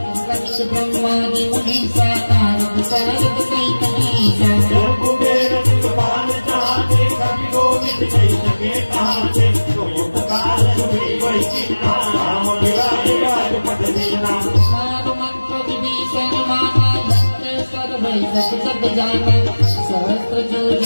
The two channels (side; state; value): both; inverted; correlation -1.00